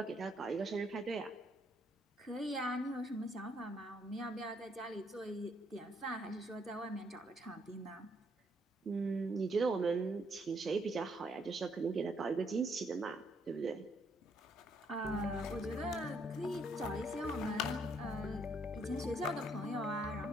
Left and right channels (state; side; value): normal; both; correlation 0.71